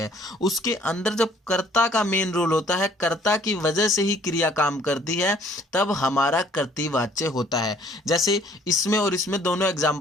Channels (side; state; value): both; normal; correlation 0.59